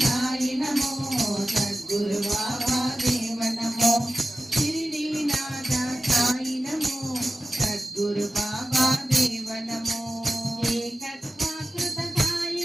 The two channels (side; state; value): both; normal; correlation 0.96